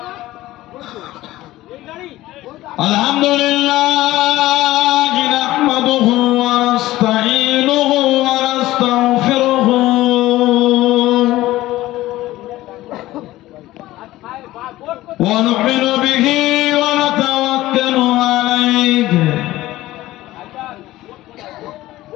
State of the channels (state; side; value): quieter; right; 16.5 dB